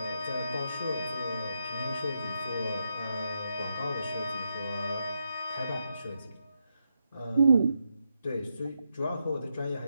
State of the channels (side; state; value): both; inverted; correlation -0.83